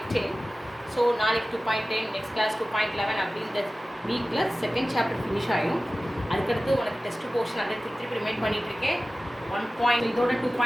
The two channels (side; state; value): both; normal; correlation 0.96